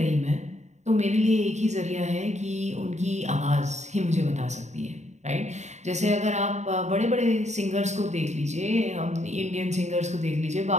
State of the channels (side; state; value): left; late; 0.33 ms